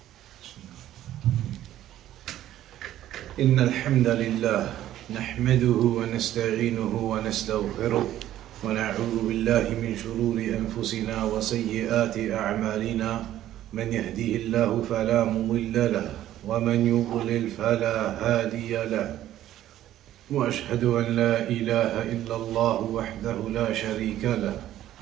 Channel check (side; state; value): left; quieter; 12.9 dB